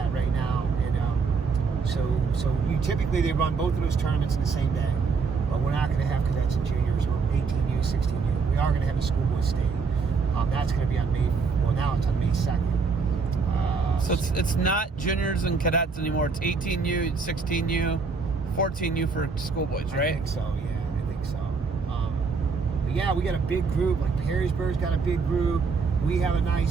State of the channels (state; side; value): quieter; left; 4.9 dB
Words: right now, and so typically they run both of those tournaments in the same day, but we're not going to have cadets and juniors or 18U, 16U. We are going to have the schoolboy state. That's going to be on May. Well, now it's on May 2nd. So it's not juniors and cadets anymore. It's 18U, 16U, 14U for schoolboys, right? I think so. Yeah, I think so. But yeah, we got a big group. Like Perrysburg's got a big group. We have a